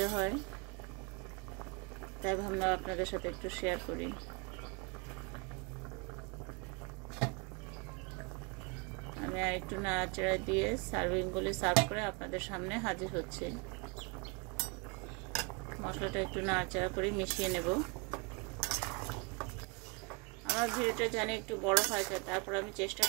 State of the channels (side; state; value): left; quieter; 32.0 dB